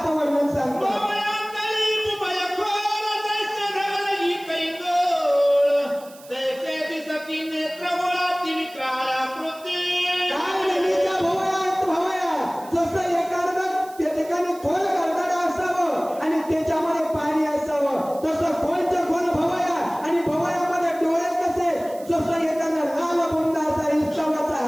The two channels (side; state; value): right; noise; hiss, 22 dB below the sound